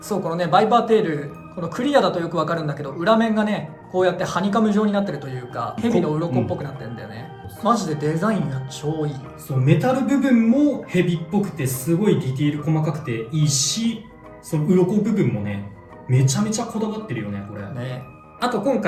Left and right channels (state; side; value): identical; both; correlation 1.00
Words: うこのねバイパーテール、このクリアだとよくわかるんだけど、裏面がねこうやってハニカム状になってるというか、蛇の鱗っぽくなってるんだよね、マジでデザインが超いい。そうメタル部分もヘビっぽくてすごいディティール細かくていいし、その鱗部分もねめちゃめちゃこだわってるよねこれね。あと今